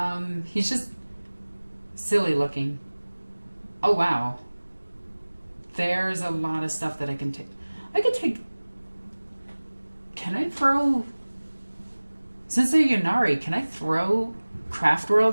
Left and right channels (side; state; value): both; inverted; correlation -1.00